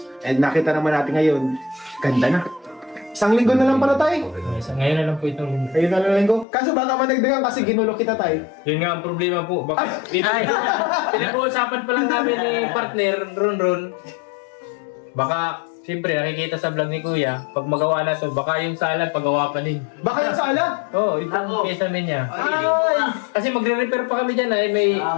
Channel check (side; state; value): right; drops out; at 6.5 s